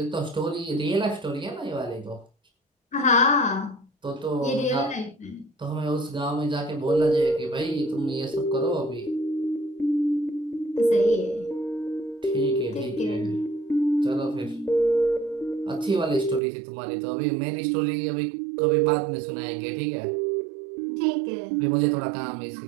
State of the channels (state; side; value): drops out; left; at 16.4 s